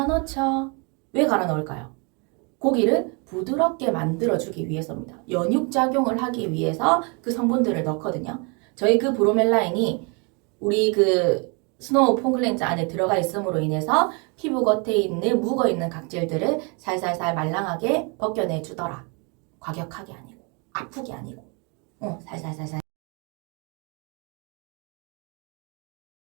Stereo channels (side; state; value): left; quieter; 33.2 dB